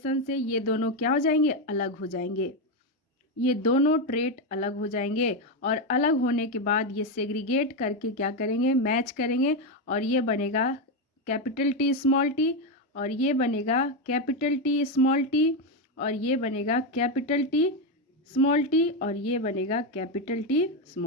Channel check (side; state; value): both; normal; correlation 0.08